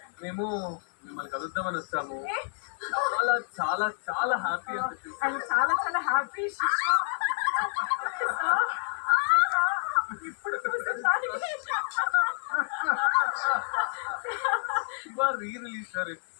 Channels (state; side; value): silent; right; digital silence